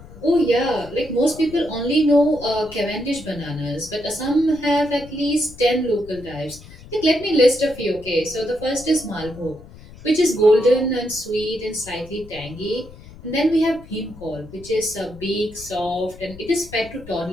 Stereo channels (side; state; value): left; noise; rumble, 19 dB below the sound